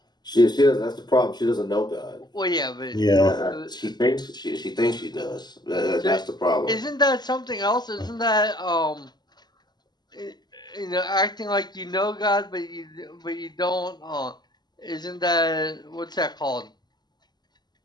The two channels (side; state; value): right; late; 0.21 ms